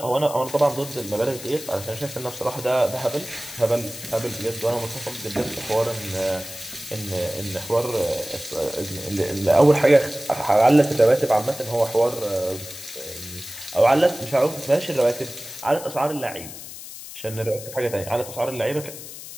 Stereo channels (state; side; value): noise; left; hiss, 13 dB below the sound